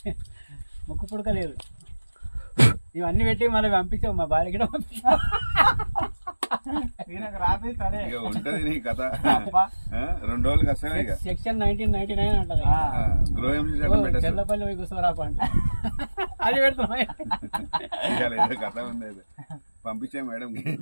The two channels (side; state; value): both; inverted; correlation -1.00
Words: ముక్కు పుడక లేదు, ఇవన్నీ పెట్టి మళ్ళీ పంపించావు మా భార్య కూడా పంపించావు। ఇక ఉంటది నీ కథ 2 రోజులకి వస్తాయి ఇక సెక్షన్ 1999 అంటది, చెల్లపల్లి పోయి కూర్చోరాప అంట, అది పెడుతున్నా ఏదో కథ ఉంది అది పంపించే మేడం